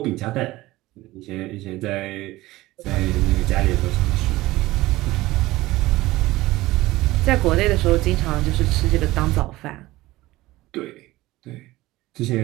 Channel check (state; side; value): quieter; left; 18.3 dB